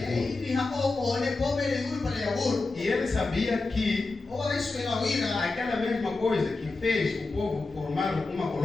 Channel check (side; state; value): right; quieter; 3.5 dB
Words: Ur. E ele sabia que aquela mesma coisa que fez o povo formar uma